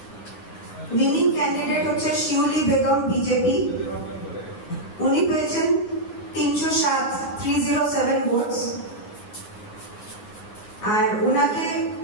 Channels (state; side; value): late; right; 9.5 ms